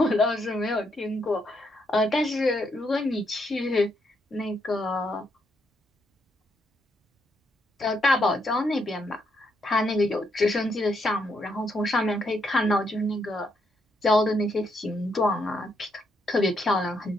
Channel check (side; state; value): both; normal; correlation 0.77